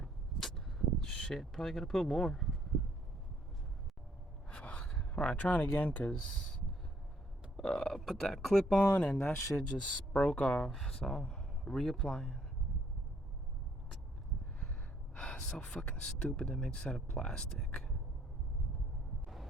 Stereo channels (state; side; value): normal; both; correlation 0.67